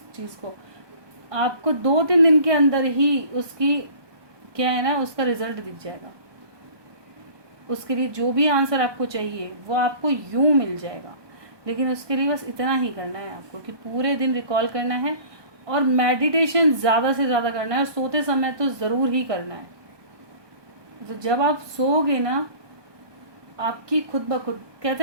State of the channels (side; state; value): left; late; 1.2 ms